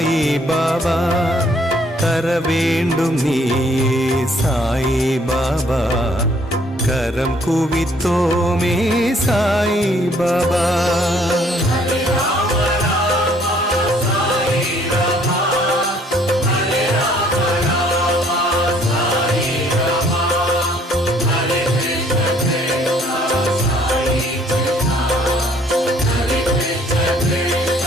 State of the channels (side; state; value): both; normal; correlation 0.62